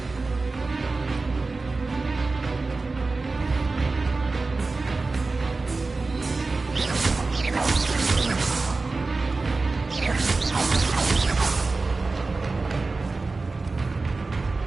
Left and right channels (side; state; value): left; quieter; 3.7 dB